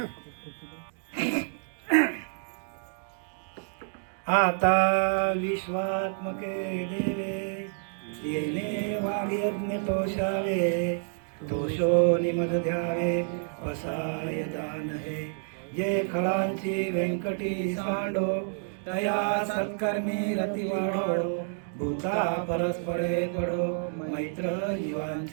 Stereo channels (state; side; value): silent; left; digital silence